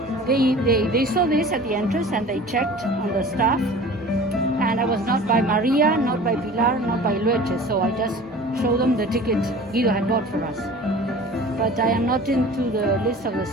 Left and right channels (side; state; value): both; normal; correlation 0.42